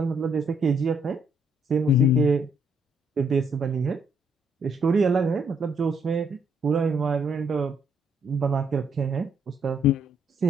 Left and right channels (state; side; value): normal; both; correlation 0.70